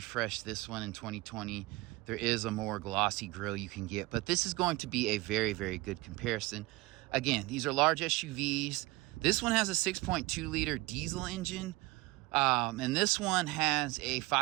this one in 2020. There is a more glossy grille you can get, but this is going to be a very, very good comparison. Again, these are large SUVs. This one has a 6.2 liter diesel engine, and this one has a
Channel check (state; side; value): quieter; left; 21.6 dB